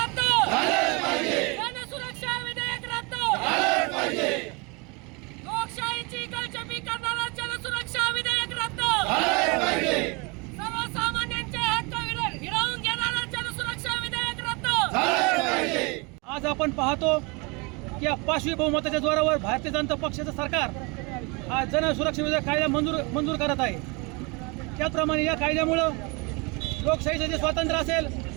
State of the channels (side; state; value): left; quieter; 29.1 dB